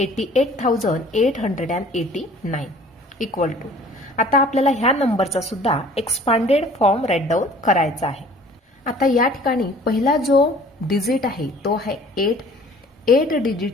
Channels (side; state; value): both; normal; correlation 0.51